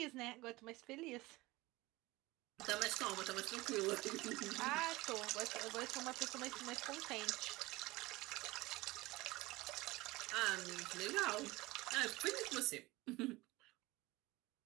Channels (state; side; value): quieter; left; 20.7 dB